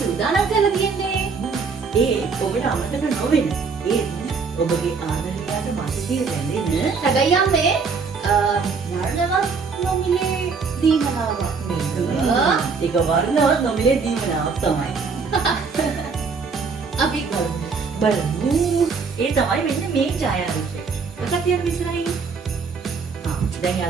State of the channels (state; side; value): quieter; left; 5.1 dB